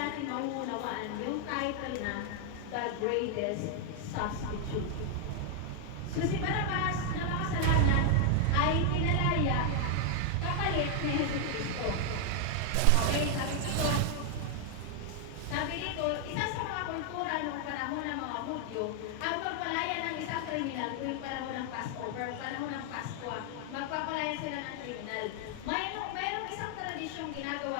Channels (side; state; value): both; different; correlation 0.00